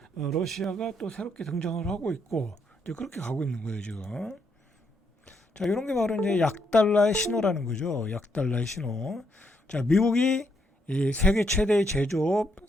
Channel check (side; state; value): both; normal; correlation 0.76